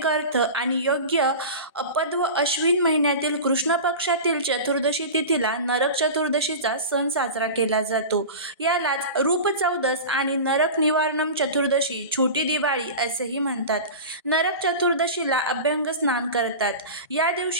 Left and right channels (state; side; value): inverted; both; correlation -0.30